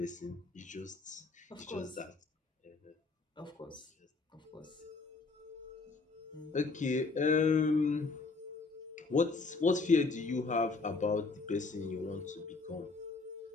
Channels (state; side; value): quieter; right; 4.0 dB